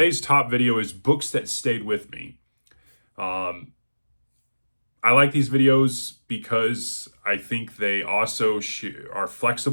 top video is books that stayed with me. I like these videos because I think they also are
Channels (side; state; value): both; inverted; correlation -1.00